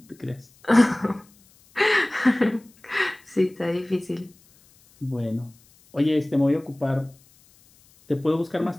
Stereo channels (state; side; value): noise; left; hiss, 30 dB below the sound